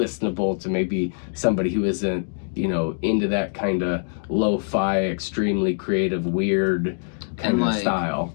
to maybe somebody who isn't, you know, into that kind of lo-fi, extremely creative, weird kind of style.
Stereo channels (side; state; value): right; silent; digital silence